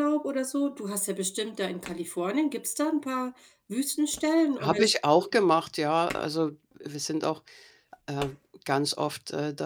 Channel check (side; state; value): both; identical; correlation 1.00